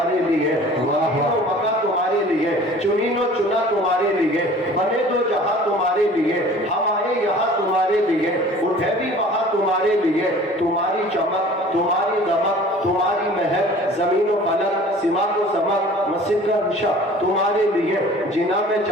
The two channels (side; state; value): both; normal; correlation 0.47